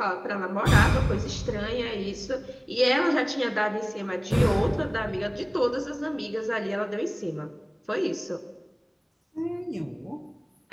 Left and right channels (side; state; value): both; identical; correlation 1.00